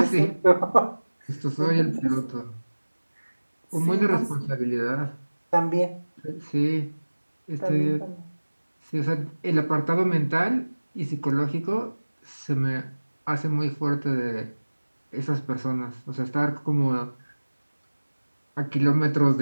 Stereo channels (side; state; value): both; inverted; correlation -1.00